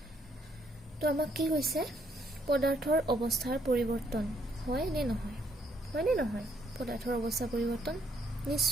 তো আমাক কি কৈছে, পদাৰ্থৰ অৱস্থাৰ পৰিৱৰ্তন হয় নে নহয়। পদাৰ্থৰ অৱস্থা পৰিৱৰ্তন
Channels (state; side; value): normal; both; correlation 0.71